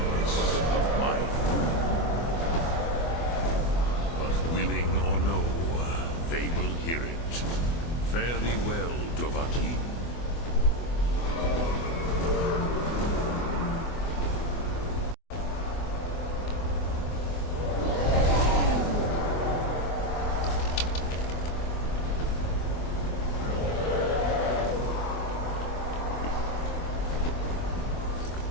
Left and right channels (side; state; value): right; late; 24 ms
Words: of my throne. But willing or no, they will hear it. Fare thee well, Dovahkiin.